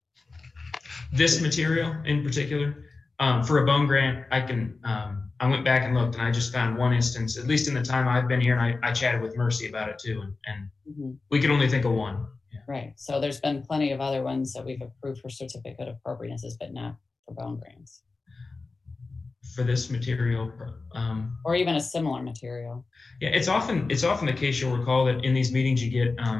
This material in particular, for a bone grant, I went back and looked, and I just found one instance, at least in the time I've been here, and I chatted with Mercy about it too, and we could only think of one. Yeah. Right. So there's been plenty of other ones that we've approved for certificate of appropriatenesses, but not for bone grants. For this material, or even a similar material. Yeah, it's often the case. You'll recall that in these meetings you'll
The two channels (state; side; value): quieter; right; 3.8 dB